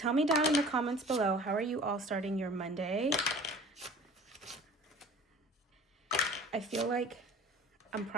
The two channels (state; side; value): normal; both; correlation 0.44